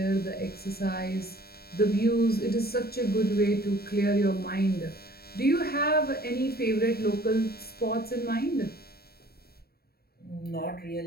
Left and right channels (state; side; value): late; right; 0.45 ms